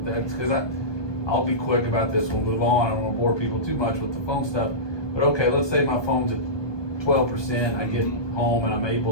that, because I'll be quick about this, we'll move on, I don't want to bore people too much with the phone stuff, but okay, let's say my phone's at 12%, I get home and I'm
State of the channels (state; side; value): late; right; 1.2 ms